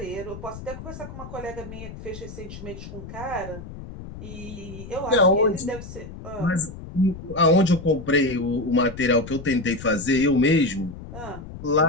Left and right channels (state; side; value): noise; left; rumble, 12 dB below the sound